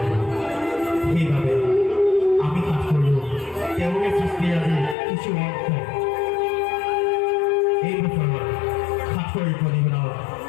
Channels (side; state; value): right; drops out; at 5.0 s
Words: সেইবাবে আমি কাজ কৰিলোঁ তেওঁলোকে সৃষ্টি আজি কিছু অংশ এই বছৰৰ ৭০ প্ৰতিবেদনত